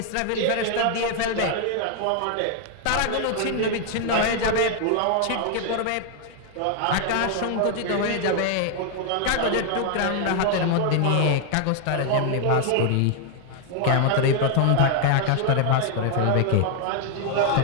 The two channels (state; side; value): different; both; correlation 0.00